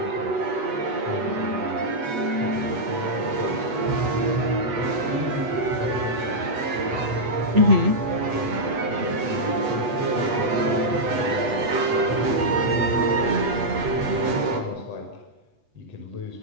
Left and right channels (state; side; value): late; left; 8.2 ms